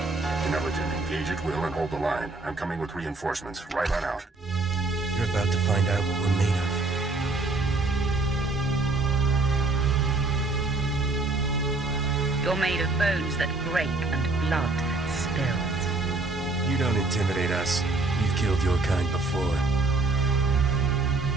Intelligent, engage at will and hold the line. I'm coming with reinforcements. Right on out. You're about to find out what we're made of. You're made of bones that break and blood that spills. You don't intimidate us. You've killed your kind before.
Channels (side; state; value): left; quieter; 3.3 dB